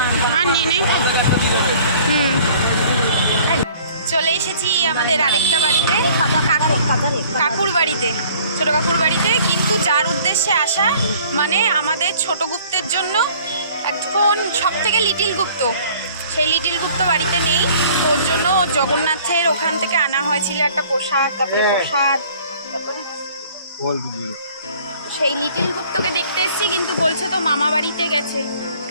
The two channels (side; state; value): both; inverted; correlation -0.53